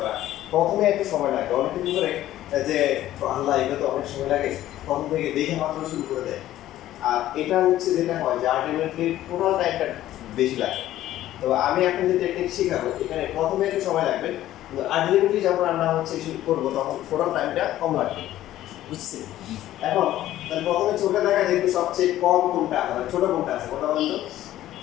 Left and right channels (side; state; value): right; quieter; 13.7 dB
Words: প্রথমে একটু সময় লাগে, অনেকে কি করে যে আল্লাহ এটা তো অনেক সময় লাগে, প্রথম থেকে দেখে মাত্র শুরু করে দেয়। আর এটা হচ্ছে যেটা হয় যে আলটিমেটলি টোটাল টাইমটা বেশি লাগে। তো আমি এখন যে টেকনিক শেখাবো এখানে প্রথমে একটু সময় লাগবে, কিন্তু আলটিমেটলি যখন আমরা হচ্ছে শুরু করবো তখন টোটাল টাইমটা কম লাগবে, বুঝছি? এখন তাহলে প্রথমে চোখে দেখা দেখবে সবচেয়ে কম কোনটা, মানে ছোট কোনটা আছে, কোনটা বলতো?